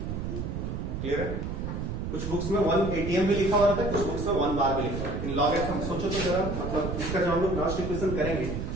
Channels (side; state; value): right; noise; rumble, 4 dB below the sound